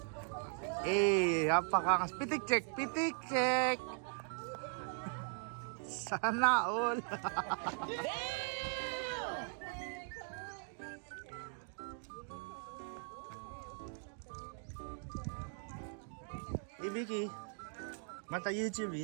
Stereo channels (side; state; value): left; silent; 51 dB below the other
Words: Napakakas. Pitik check. Sana all. Ibiki. Mata YouTube